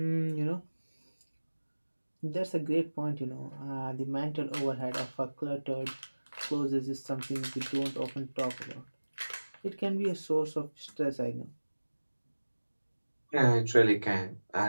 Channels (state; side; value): inverted; both; correlation -1.00